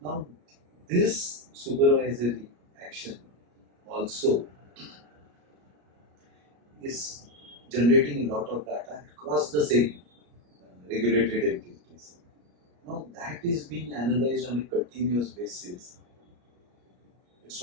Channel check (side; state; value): left; late; 33 ms